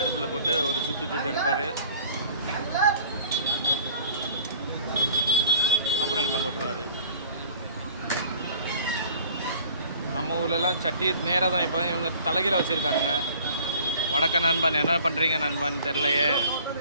போட்டு ஒரு சுட்டு எடுப்பார். அப்புறம் இங்கே போட்டுருவார். நம்ம ஊர்லலாம் சட்டி நேராக தான். இப்போ இவங்க தலைகீழ வச்சுருக்கானுங்க. வடக்க நண்பன் என்ன பண்ணுறீங்க நண்பன் தெரிலையே.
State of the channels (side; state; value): both; inverted; correlation -0.50